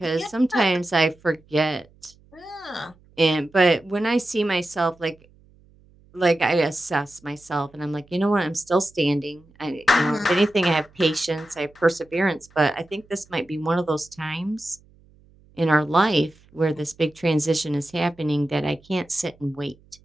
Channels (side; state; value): right; noise; hum, 29 dB below the sound